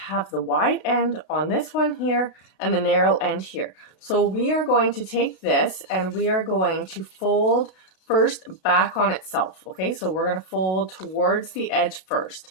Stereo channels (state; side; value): late; right; 36 ms